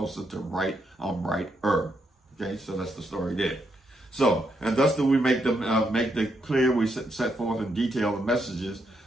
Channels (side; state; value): both; normal; correlation 0.79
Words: to right. I'm righter. Okay, so that's the story there. So, and thus do we make the clear, we set forth in detail the messages,